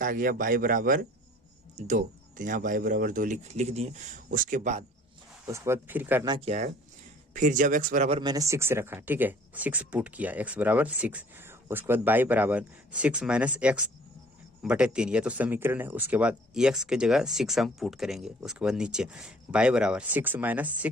आ गया बाई बराबर 2। तो यहाँ बाई बराबर 2 लिख दिए। उसके बाद फिर करना क्या है, फिर जब x बराबर मैंने 6 रखा, ठीक है, 6 पुट किया, x = 6। उसके बाद बाई बराबर 6 - x / 3, ये तो समीकरण है। उसके बाद x के जगह 6 हम पुट करेंगे। उसके बाद नीचे बाई बराबर 6 -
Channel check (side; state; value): both; normal; correlation 0.53